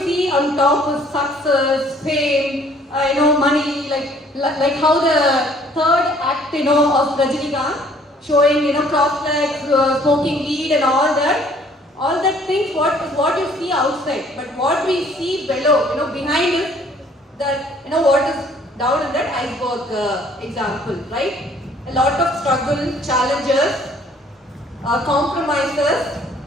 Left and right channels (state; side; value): normal; both; correlation 0.59